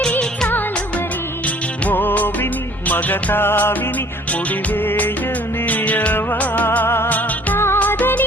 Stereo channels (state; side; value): normal; both; correlation 0.55